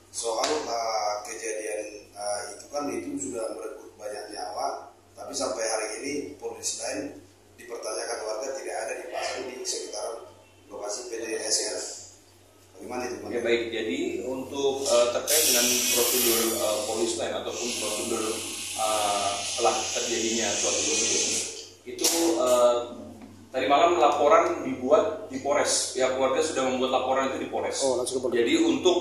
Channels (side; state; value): both; identical; correlation 1.00